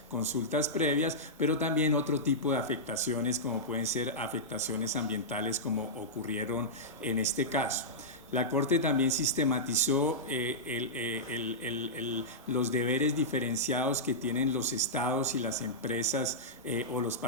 consultas previas, pero también otro tipo de afectaciones como pueden ser afectaciones ambientales como ocurrieron en este caso. La Corte también sistematizó los deberes diferenciados que tienen los estados y las empresas o los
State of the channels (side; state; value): both; normal; correlation -0.11